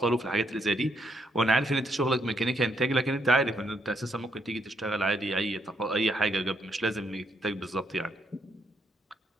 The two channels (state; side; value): normal; both; correlation 0.74